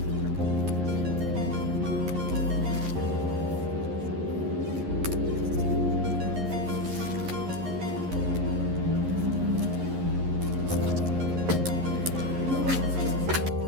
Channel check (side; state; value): left; late; 11 ms